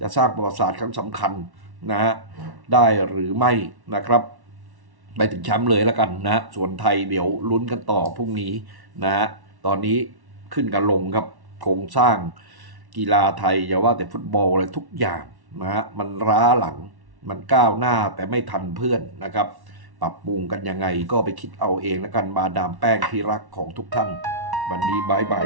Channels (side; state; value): left; late; 1.1 ms